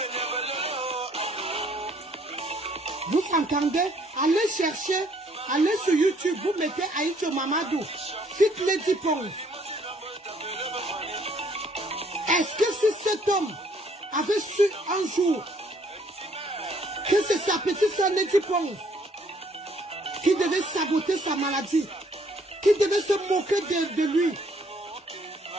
Vous entendez? Allez chercher, allez sur YouTube, vous mettez Aïdjo Mamadou, Fit Lady Pons. Est-ce que si cet homme avait su un jour que c'est sa petite soeur Lady Pons qui devait saboter sa maladie, qui devait se moquer de lui,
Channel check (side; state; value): both; normal; correlation 0.64